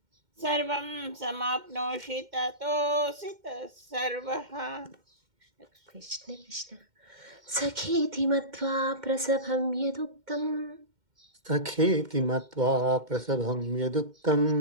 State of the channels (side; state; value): left; late; 2.1 ms